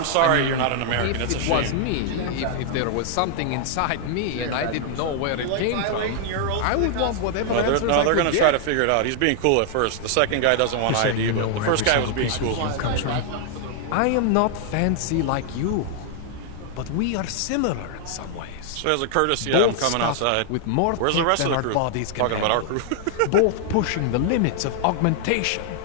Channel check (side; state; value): both; different; correlation 0.00